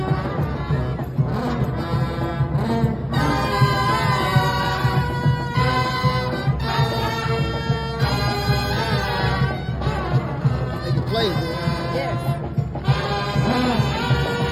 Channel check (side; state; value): both; identical; correlation 1.00